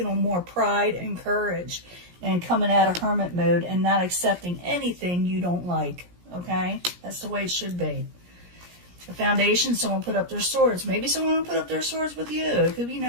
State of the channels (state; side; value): late; left; 17 ms